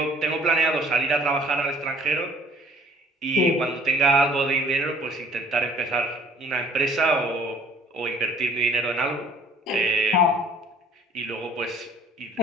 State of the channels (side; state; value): both; normal; correlation 0.55